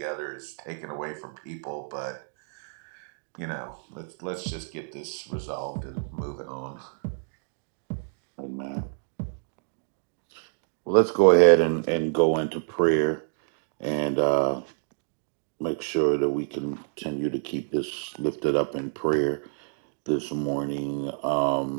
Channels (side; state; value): left; silent; digital silence